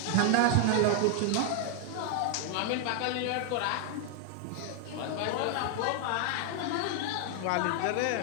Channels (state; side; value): different; both; correlation 0.00